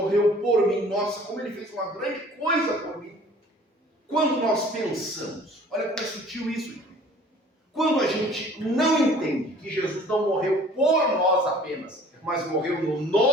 por mim. Nossa, como ele fez uma grande coisa por mim. Quando nós pensamos, olha como é sutil isso, gente. Quando a gente não entende que Jesus não morreu por nós apenas, mas morreu no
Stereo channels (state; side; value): normal; both; correlation 0.51